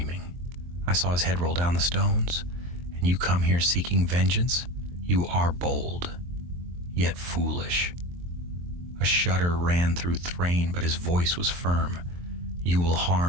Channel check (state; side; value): late; left; 23 ms